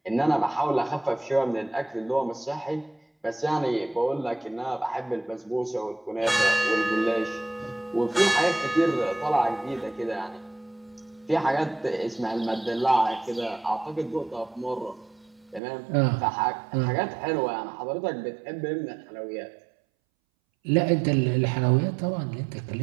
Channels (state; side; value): drops out; left; at 15.6 s